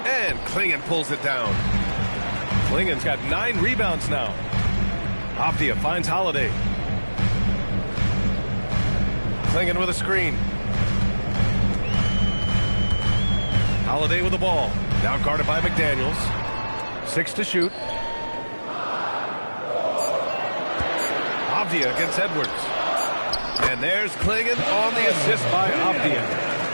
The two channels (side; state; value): both; inverted; correlation -1.00